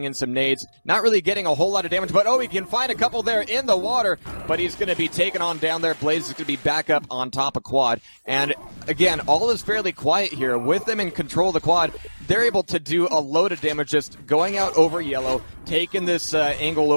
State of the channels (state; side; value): inverted; both; correlation -1.00